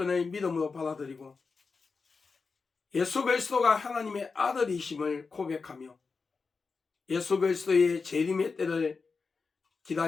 믿음으로 받아들이고 예수 그리스도가 하나님의 아들이심을 고백하며 예수 그리스도의 재림의 때를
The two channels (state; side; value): quieter; right; 4.7 dB